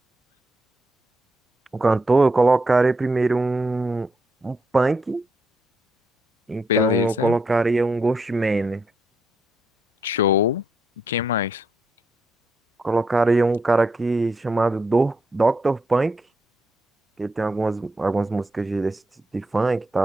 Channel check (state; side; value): normal; both; correlation 0.79